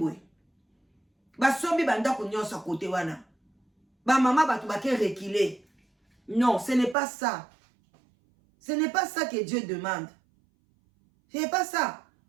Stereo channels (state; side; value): drops out; left; at 7.0 s